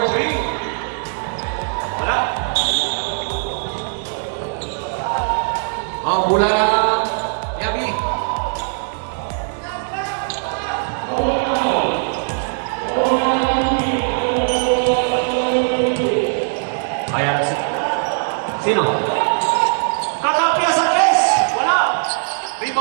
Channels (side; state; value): left; silent; 63 dB below the other